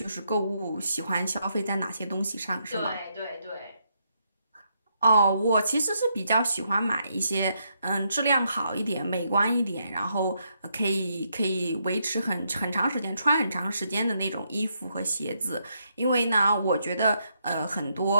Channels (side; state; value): both; inverted; correlation -0.78